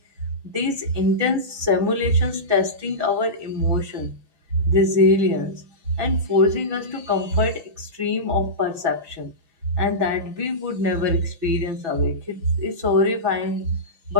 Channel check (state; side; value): late; left; 6.0 ms